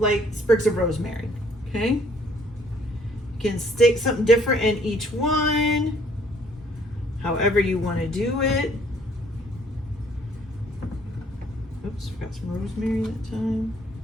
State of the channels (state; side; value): normal; both; correlation 0.62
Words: sprigs of rosemary, okay? You can stick something different in each one, however you want to do it. Oops, forgot some rosemary that time.